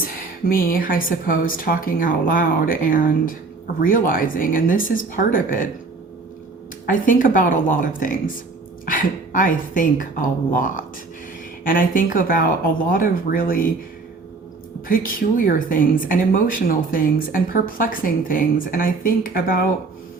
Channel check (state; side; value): quieter; left; 3.9 dB